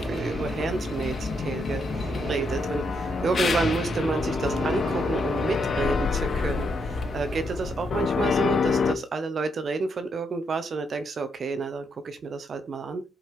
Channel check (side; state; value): both; normal; correlation 0.77